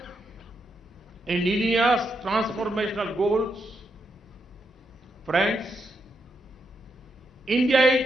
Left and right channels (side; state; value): both; normal; correlation 0.81